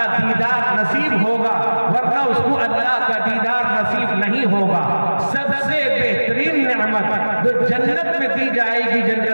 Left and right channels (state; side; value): inverted; both; correlation -1.00